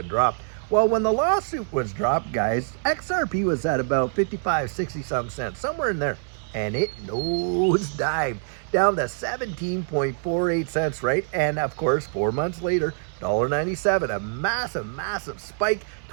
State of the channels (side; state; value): left; silent; 62 dB below the other